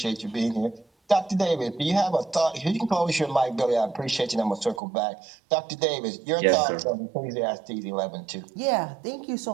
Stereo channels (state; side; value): drops out; left; at 4.8 s